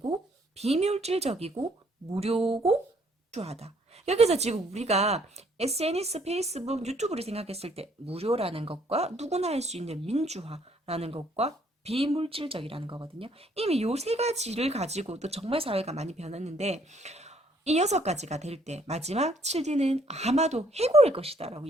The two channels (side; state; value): both; normal; correlation 0.66